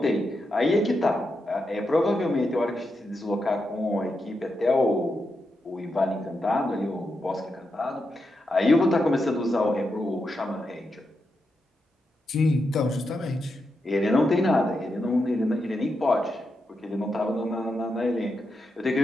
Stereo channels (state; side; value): normal; both; correlation 0.86